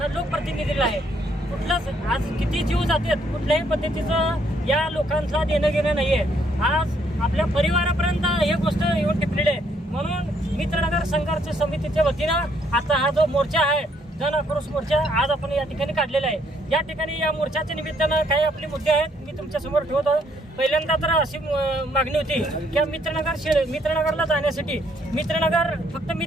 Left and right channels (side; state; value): both; normal; correlation 0.69